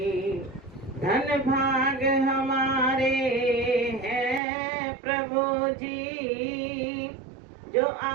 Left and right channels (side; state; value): left; drops out; at 4.4 s